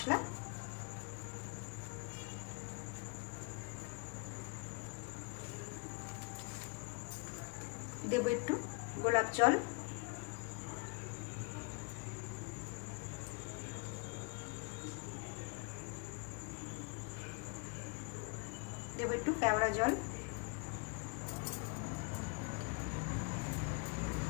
দেবো একটু গোলাপ জল। দেবো একটু কেওড়া জল।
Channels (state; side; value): quieter; right; 33.0 dB